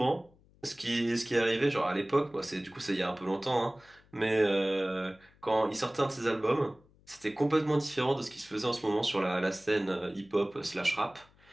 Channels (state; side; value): noise; left; hum, 30 dB below the sound